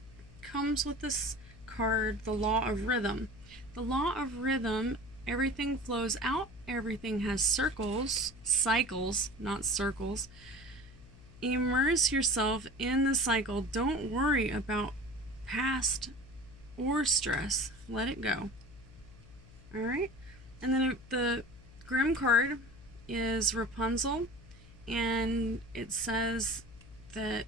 comes with this card, the Law of Rhythm. The Law of Rhythm, everything flows out, everything has cycles, not circles. Immerse yourself in the cycle. Don't worry about past or stress. Let it go. Alright? And then the Grimm card is Rapunzel, and it says that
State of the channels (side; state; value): left; noise; hum, 21 dB below the sound